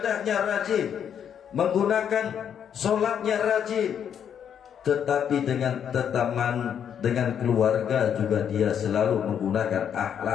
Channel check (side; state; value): right; quieter; 8.5 dB